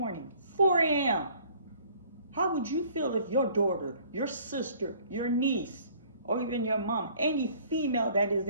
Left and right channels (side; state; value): both; inverted; correlation -0.55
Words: 4 a.m. How would you feel if your daughter, your sister, your niece, or even your mom, any female that is